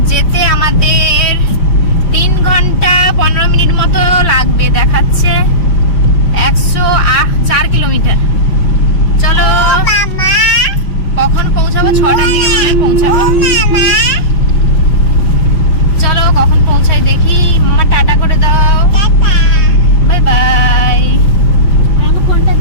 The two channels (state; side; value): late; right; 5.3 ms